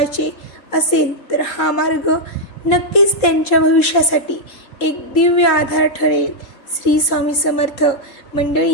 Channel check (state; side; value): late; right; 3.7 ms